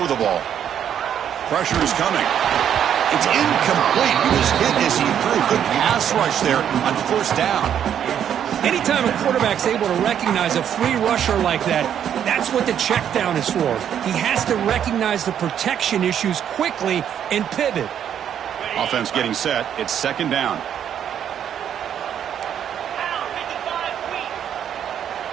the ball. Pressure is coming. It's incomplete. He was hit as he threw. Good pass rush there on 1st down. Anytime a quarterback's able to recognize a free rusher like that, that's what the check down is for. He has to recognize the protection issues quickly and pivot. Offense getting set. It's second down.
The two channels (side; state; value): left; quieter; 9.3 dB